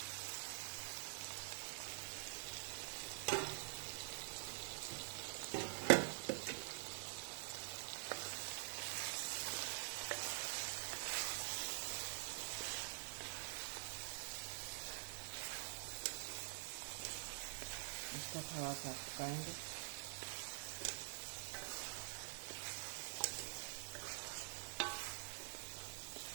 इसको थोड़ा सा पकाएंगे।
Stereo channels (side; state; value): left; silent; digital silence